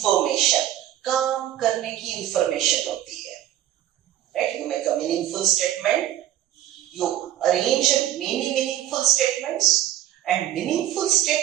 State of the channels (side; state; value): left; quieter; 12.6 dB